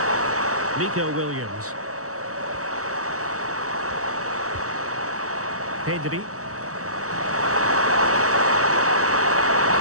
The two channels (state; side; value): late; left; 0.65 ms